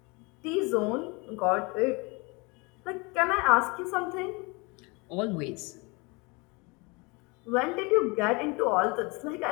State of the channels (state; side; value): quieter; right; 28.0 dB